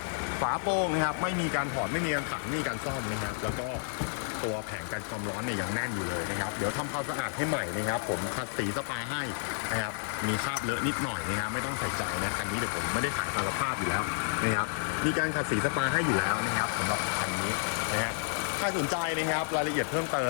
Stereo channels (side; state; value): right; silent; 57 dB below the other